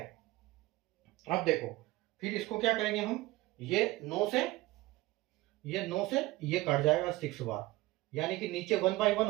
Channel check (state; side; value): quieter; left; 18.8 dB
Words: अब देखो फिर इसको क्या करेंगे हम? ये 9 से ये कट जाएगा 6 बार, यानी कि नीचे 1/1